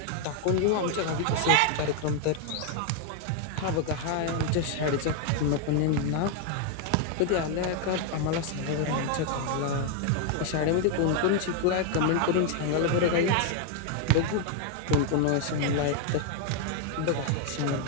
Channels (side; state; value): both; different; correlation 0.01